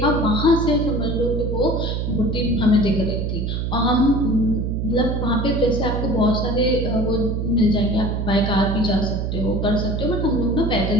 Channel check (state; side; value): noise; right; hum, 1 dB below the sound